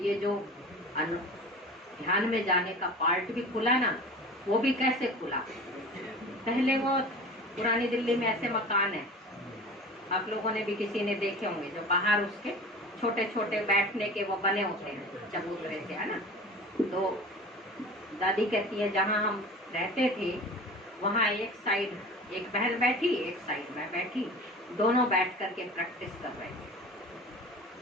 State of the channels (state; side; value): normal; both; correlation 0.38